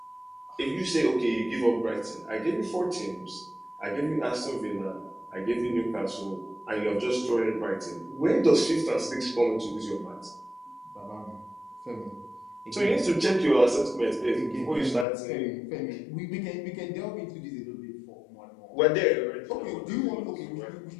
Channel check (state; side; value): drops out; right; at 15.1 s